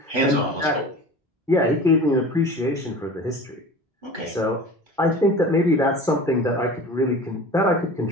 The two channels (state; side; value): normal; both; correlation 0.38